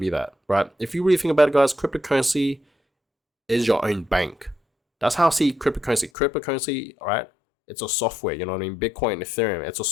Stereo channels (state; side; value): drops out; right; at 6.1 s